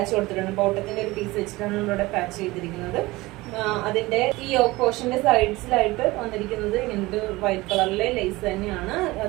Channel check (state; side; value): quieter; left; 20.5 dB